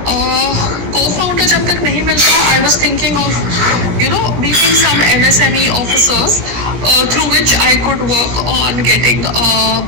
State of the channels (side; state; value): left; late; 17 ms